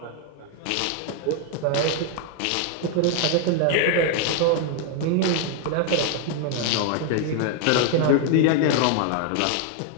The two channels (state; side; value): different; both; correlation 0.01